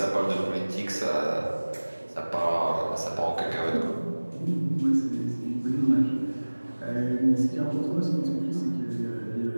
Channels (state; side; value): inverted; both; correlation -1.00